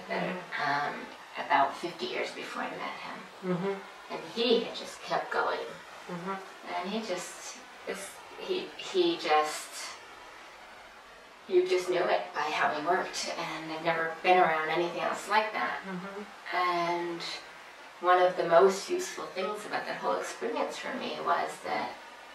about 50 years before I met him. And he had just kept going. And you just knew it by how he worked, and I've never been around anything else like that. And one of the most useful things about that whole experience for me was that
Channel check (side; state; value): both; identical; correlation 1.00